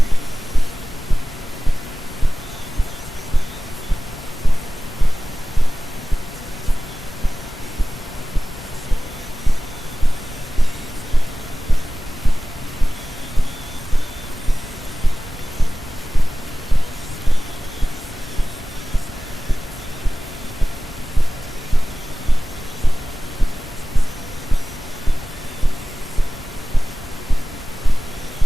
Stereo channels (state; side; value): normal; both; correlation 0.97